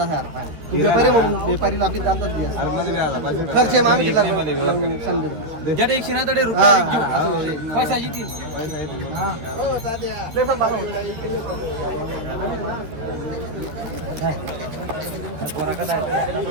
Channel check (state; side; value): late; left; 13 ms